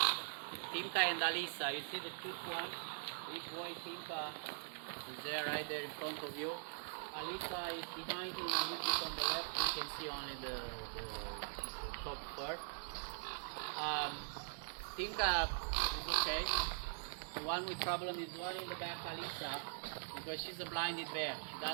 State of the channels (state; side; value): silent; left; digital silence